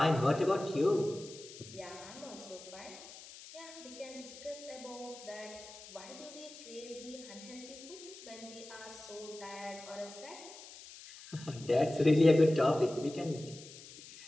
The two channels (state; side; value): noise; left; hiss, 16 dB below the sound